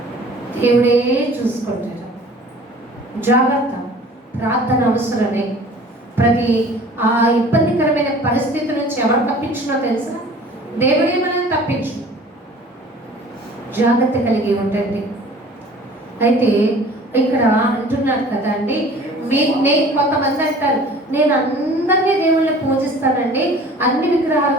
దేవుడే చూసుకుంటారు. జాగ్రత్త, ప్రార్థన అవసరమే. ప్రతి ఆ ఇబ్బందికరమైన పరిస్థితి నుంచి ఎవరు తప్పించినో తెలుసా? దేవుడే మనల్ని తప్పించు. జాగ్రత్త కలిగి ఉండండి. అయితే ఇక్కడ అంటున్నారు కదా అండి, కొంతమంది అంటారు, నేను అందరినీ దేవుళ్ళని పూజిస్తానండి, అన్ని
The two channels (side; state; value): both; normal; correlation 0.47